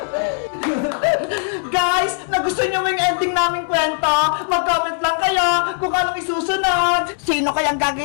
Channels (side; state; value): right; silent; digital silence